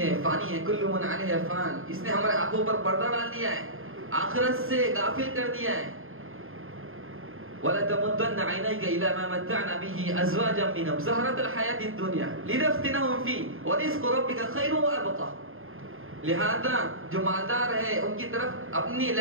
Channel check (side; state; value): left; late; 0.60 ms